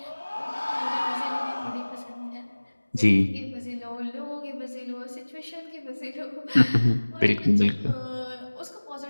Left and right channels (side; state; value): both; inverted; correlation -1.00